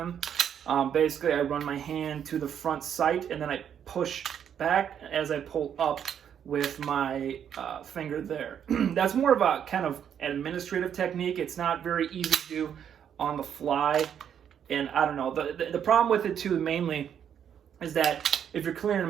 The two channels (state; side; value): quieter; left; 8.8 dB